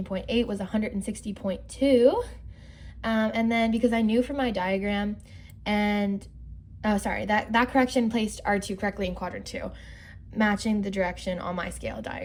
was 160.2. And then because I knew from my diagram and, that correction placed R2 correctly in quadrant 2, matching the direction on my scale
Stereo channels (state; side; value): identical; both; correlation 1.00